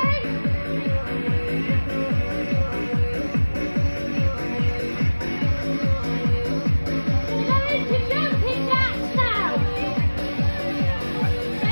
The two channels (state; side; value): inverted; both; correlation -1.00